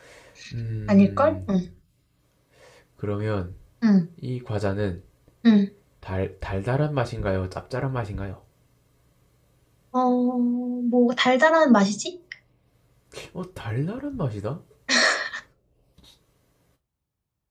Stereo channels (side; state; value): both; identical; correlation 1.00